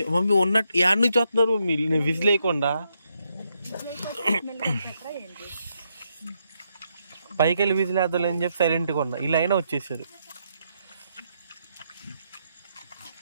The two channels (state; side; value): inverted; both; correlation -0.79